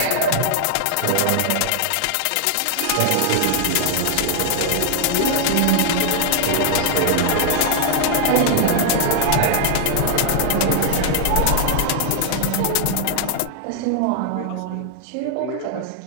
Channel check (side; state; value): both; different; correlation 0.00